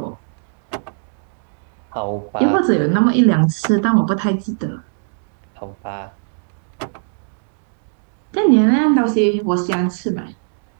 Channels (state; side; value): silent; left; digital silence